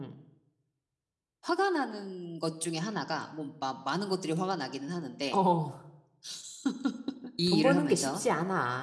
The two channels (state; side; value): identical; both; correlation 1.00